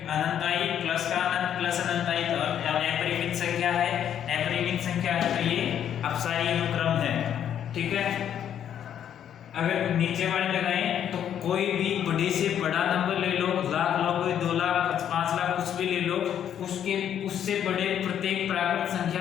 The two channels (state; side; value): quieter; right; 9.6 dB